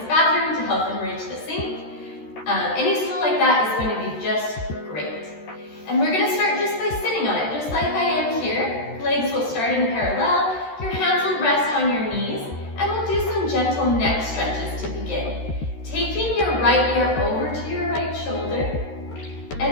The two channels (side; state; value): right; late; 13 ms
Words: bathroom to help them reach the sink. Any stool like that is going to be just great. And we're going to start just by sitting on it, just like I am here. Legs will start in parallel. Your hands will rest on your knees, and we'll do some gentle neck stretches to begin. Taking your right ear over to your right shoulder,